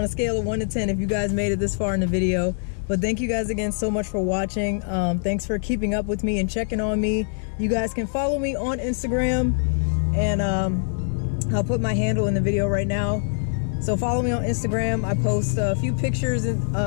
a scale of 1 to 10 if you guys made it this far in the video. But thank you guys again so much for watching. Thanks for keeping up with me and checking on me. You guys can follow me on Instagram, and I'll put my handle in the video right now. So follow me on Instagram. I post a few pictures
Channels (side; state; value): right; silent; digital silence